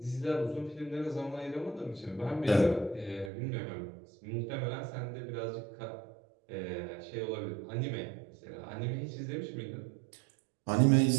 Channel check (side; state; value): left; drops out; at 3.3 s